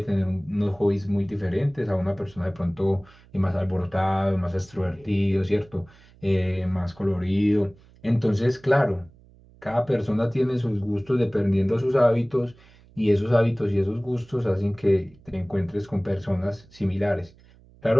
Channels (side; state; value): right; noise; hum, 26 dB below the sound